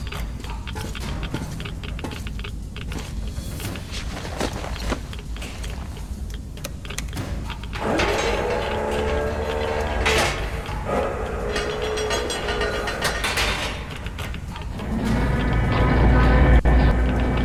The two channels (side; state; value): both; identical; correlation 1.00